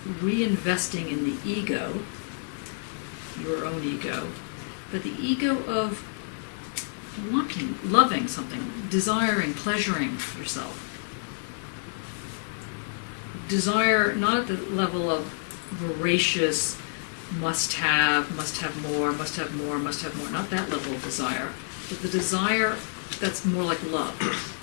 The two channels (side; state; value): right; silent; digital silence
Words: reinvesting in the ego, your own ego, but the ego of wanting, loving something, desiring, pleasuring yourself. Desire not at the level of voracious must have more, not that level of desire, but the desire that's more like love